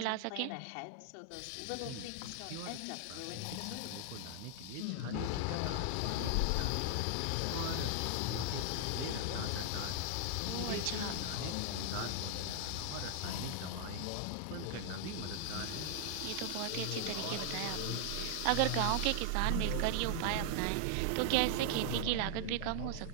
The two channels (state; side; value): different; both; correlation 0.00